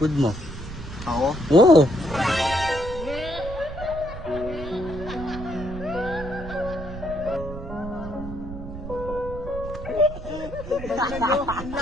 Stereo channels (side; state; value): right; noise; rumble, 10 dB below the sound